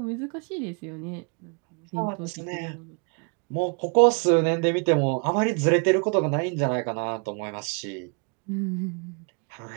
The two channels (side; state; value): left; quieter; 36.5 dB